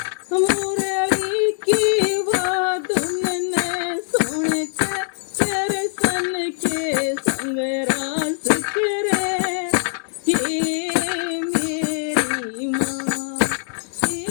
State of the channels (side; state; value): right; silent; digital silence